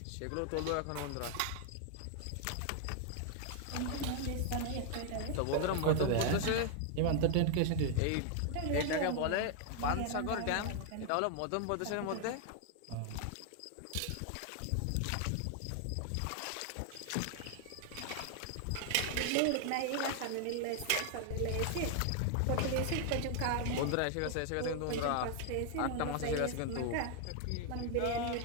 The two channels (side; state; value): both; different; correlation 0.00